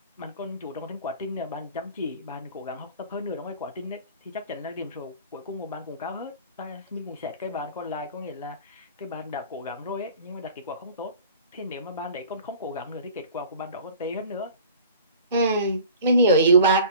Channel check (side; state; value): both; inverted; correlation -0.45